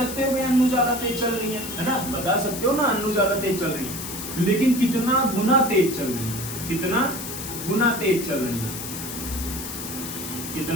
हो कि अन्नू ज्यादा तेज चल रही है ना। बता सकते हो ना अन्नू ज्यादा तेज चल रही है, लेकिन कितना गुना तेज चल रही है? कितना गुना तेज चल रही है?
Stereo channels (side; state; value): left; noise; hiss, 8 dB below the sound